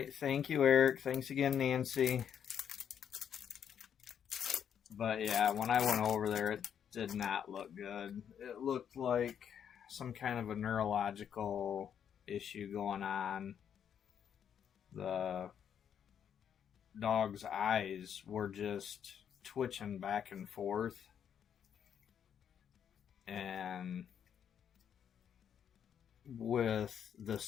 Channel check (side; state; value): right; quieter; 8.5 dB